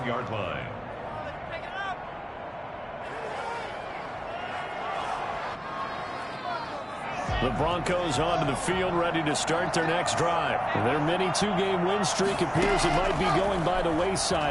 line. The Broncos onto the field, ready to start their next drive. Their mini 2-game win streak appears it might be going by the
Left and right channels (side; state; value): both; identical; correlation 1.00